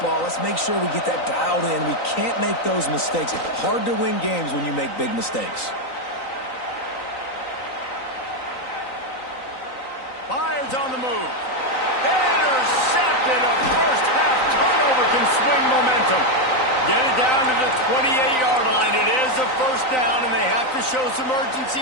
Let's make sure we get that dialed in. We can't make those mistakes. Hard to win games when you make big mistakes. Fires on the move. Intercepted. A first half turnover can swing momentum. Get it down to the 28-yard line. It is a first down, and they have to show some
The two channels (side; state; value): right; late; 3.9 ms